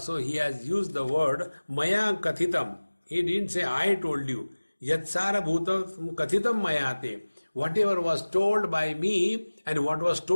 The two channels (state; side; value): inverted; both; correlation -1.00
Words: he has used the word maya kathitam. He didn't say I told you. Yatsara bhutam kathitam mayate. Whatever was told by me and what was